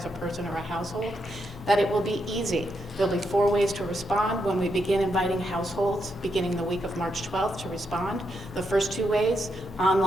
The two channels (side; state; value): both; normal; correlation 0.81